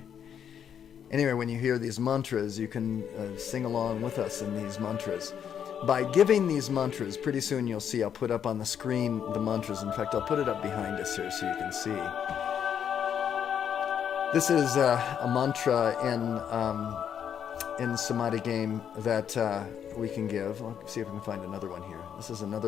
Anyway, when you hear these mantras, you can sing along with us in these mantras. By giving these mantras, pretty soon you'll see, I'll put up on the screen the mantras. In fact, I'll put it up behind us here so you can see. This is a mantra in Samadhi game that we can give. I'll see if I can find another one here. This is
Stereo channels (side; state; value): right; quieter; 8.5 dB